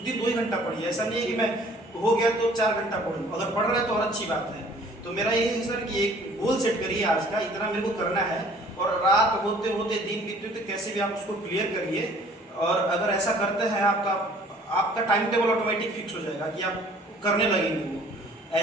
दिन 2 ही घंटा पढ़िए। ऐसा नहीं है कि मैं हो गया तो 4 घंटा पढ़ूँ, अगर पढ़ रहे हैं तो और अच्छी बात है। तो मेरा यही है सर कि एक गोल सेट करिए आज का, इतना मेरे को करना है, और रात होते होते दिन बीतते होते कैसे भी आप उसको क्लियर करिए। और अगर ऐसा करते हैं आप तो आपका टाइम टेबल ऑटोमेटिक फिक्स हो जाएगा कि आप करने लगेंगे वो।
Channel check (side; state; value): both; normal; correlation 0.54